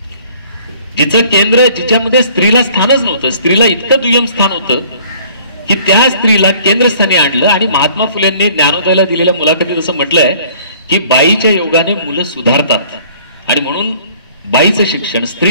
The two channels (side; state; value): both; inverted; correlation -0.54